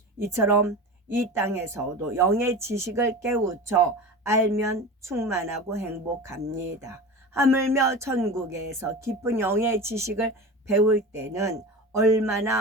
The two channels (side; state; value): both; normal; correlation 0.31